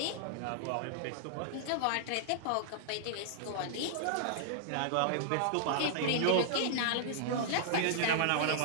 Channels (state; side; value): different; both; correlation -0.01